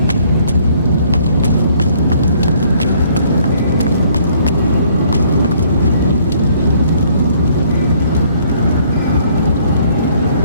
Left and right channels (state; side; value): inverted; both; correlation -0.62